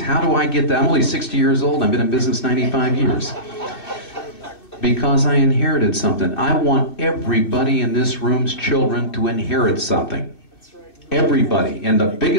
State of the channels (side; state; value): right; late; 2.5 ms